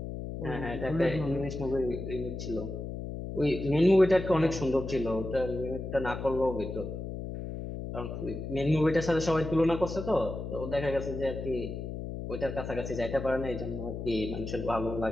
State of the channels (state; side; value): noise; left; hum, 6 dB below the sound